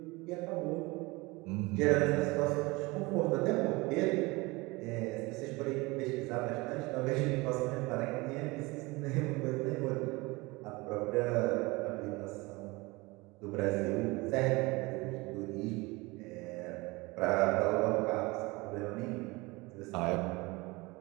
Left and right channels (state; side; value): quieter; left; 23.7 dB